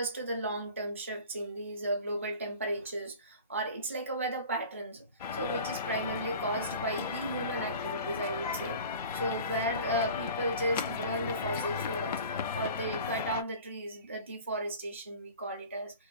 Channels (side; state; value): both; inverted; correlation -0.41